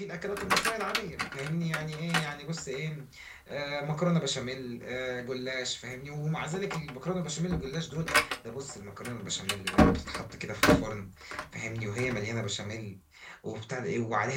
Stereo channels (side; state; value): both; identical; correlation 1.00